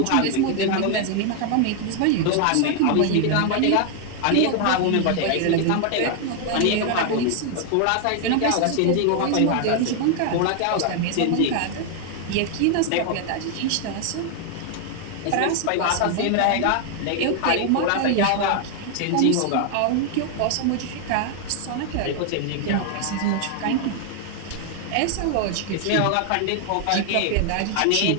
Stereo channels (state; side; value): different; both; correlation 0.00